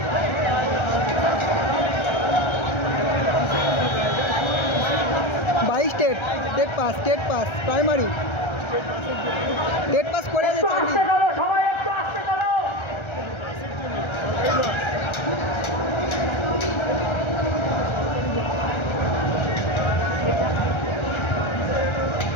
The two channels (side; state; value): right; late; 1.3 ms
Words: TET pass primary TET pass করে যে চাকরি।